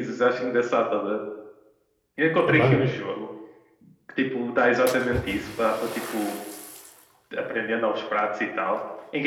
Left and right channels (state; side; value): identical; both; correlation 1.00